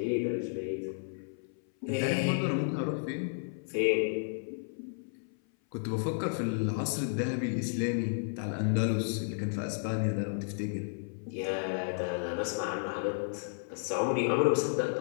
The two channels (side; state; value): right; silent; 56 dB below the other